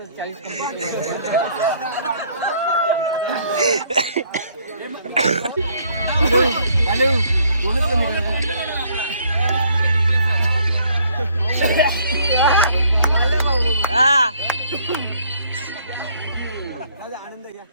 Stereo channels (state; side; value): inverted; both; correlation -0.64